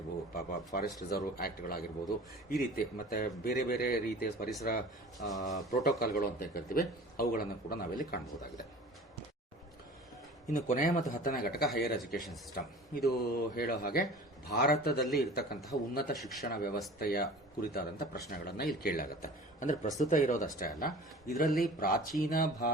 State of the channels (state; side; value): normal; both; correlation 0.42